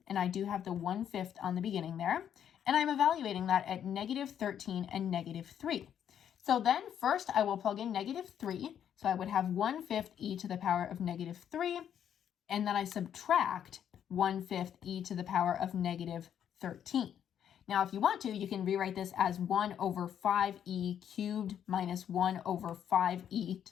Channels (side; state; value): right; quieter; 9.3 dB